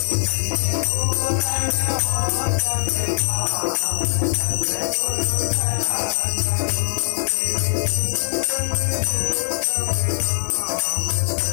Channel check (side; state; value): right; silent; digital silence